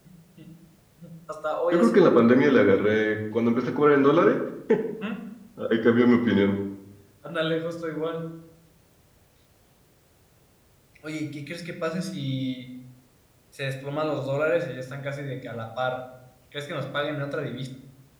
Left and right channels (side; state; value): both; identical; correlation 1.00